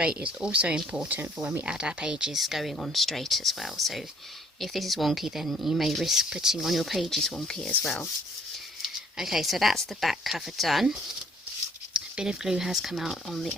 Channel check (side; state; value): both; normal; correlation 0.61